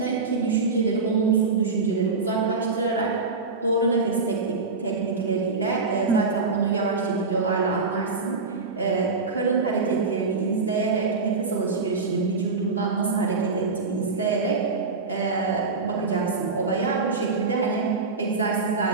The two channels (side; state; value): left; quieter; 4.2 dB